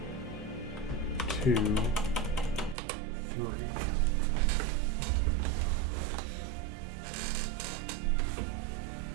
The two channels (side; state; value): left; drops out; at 2.8 s